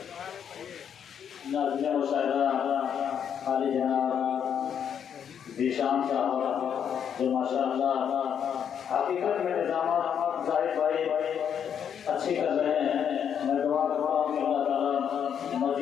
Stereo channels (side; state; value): right; quieter; 8.3 dB